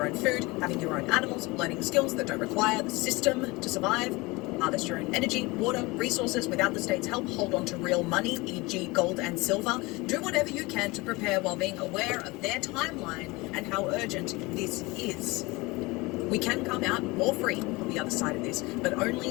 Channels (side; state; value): right; quieter; 23.4 dB